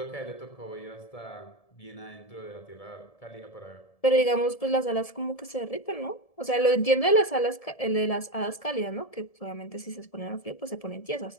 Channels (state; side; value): late; right; 1.7 ms